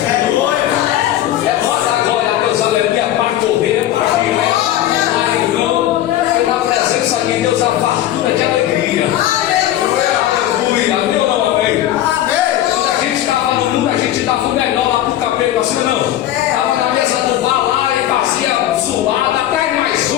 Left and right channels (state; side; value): quieter; right; 12.8 dB